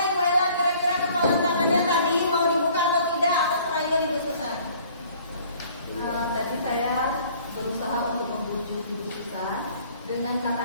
Tadi saya berusaha untuk membujuk Ibu Susan dengan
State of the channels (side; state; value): both; inverted; correlation -0.55